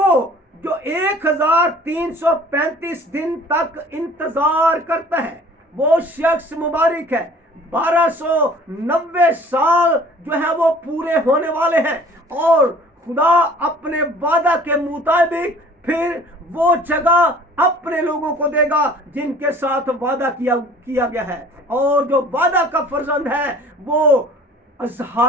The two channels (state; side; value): normal; both; correlation 0.49